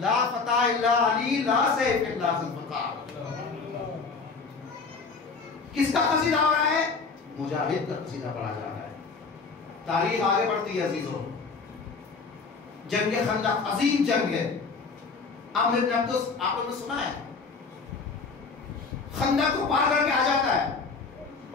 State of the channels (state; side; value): quieter; right; 4.6 dB